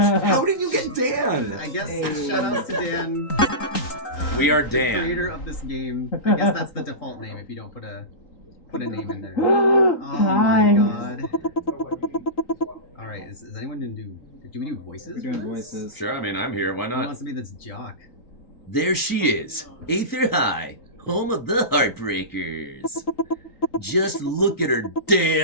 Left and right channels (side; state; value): right; late; 3.9 ms